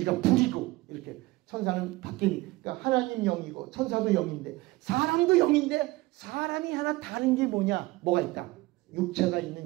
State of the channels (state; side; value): quieter; left; 20.5 dB